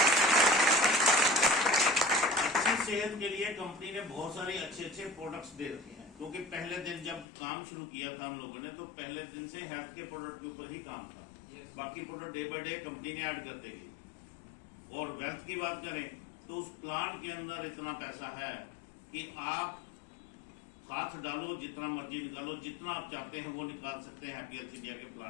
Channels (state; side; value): drops out; right; at 7.2 s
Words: सेहत के लिए कंपनी ने बहुत सारे अच्छे अच्छे प्रोडक्ट्स दे रखे हैं, क्योंकि पहले दिन जब काम शुरू किया था हम लोगों ने, तो पहले दिन से हेल्थ के प्रोडक्ट के ऊपर ही काम था। बाकी product day by day company ने ऐड करते गई। और वेल्थ की बात करें तो उस प्लान के अंदर इतना पैसा है कि आप हाथ डालो, जितना मर्जी निकालो, जितना आप चाहते हैं वो निकाल सकते हैं हैप्पी हेल्थ इंडिया के